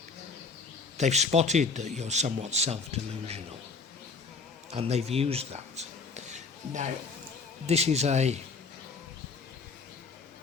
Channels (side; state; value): right; quieter; 4.5 dB